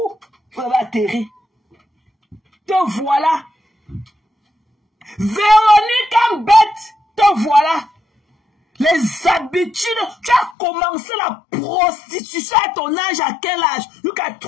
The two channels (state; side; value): drops out; right; at 10.6 s